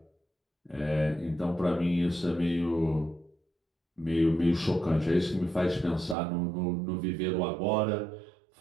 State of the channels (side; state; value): left; drops out; at 6.2 s